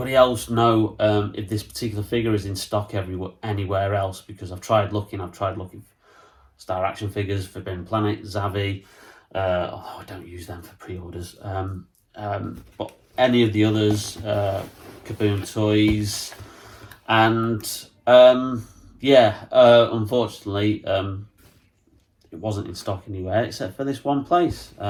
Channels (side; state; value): both; identical; correlation 1.00